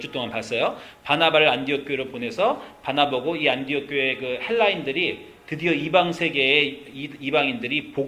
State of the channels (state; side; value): identical; both; correlation 1.00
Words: 봤어요. 바나바를 안디옥 교회로 보내서 바나보고 이 안디옥 교회 그 헬라인들이 드디어 이방 세계의 이방인들이